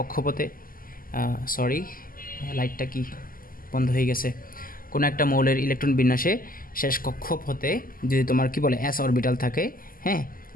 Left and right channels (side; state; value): right; late; 0.41 ms